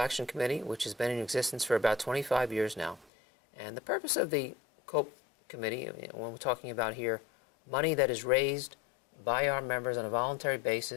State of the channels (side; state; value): right; drops out; at 3.1 s